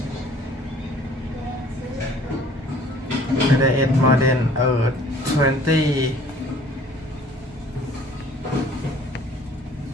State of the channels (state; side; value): normal; both; correlation 0.53